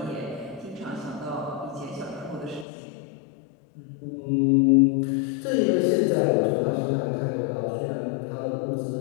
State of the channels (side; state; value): right; drops out; at 2.7 s